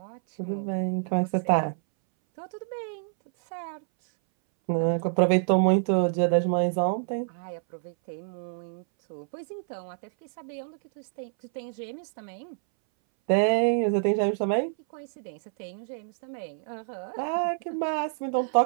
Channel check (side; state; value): left; silent; 60 dB below the other